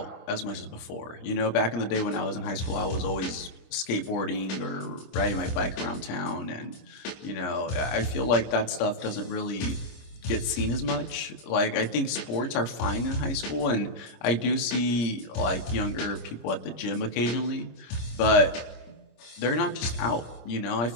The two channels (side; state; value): right; late; 26 ms